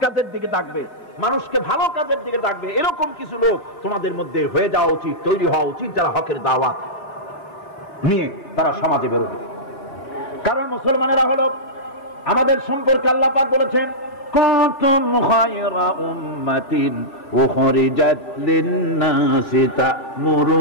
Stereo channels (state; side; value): late; right; 3.4 ms